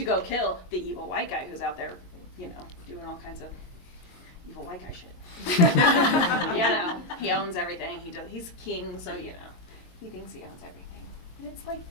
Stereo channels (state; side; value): late; right; 22 ms